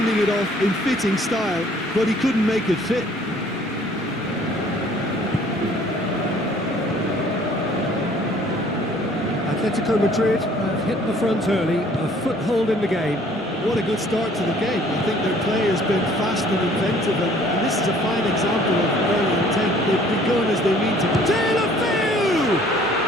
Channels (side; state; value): both; normal; correlation 0.56